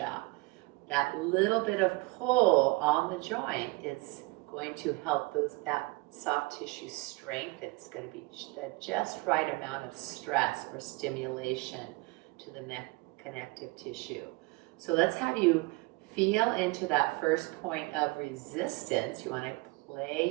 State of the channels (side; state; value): left; quieter; 25.0 dB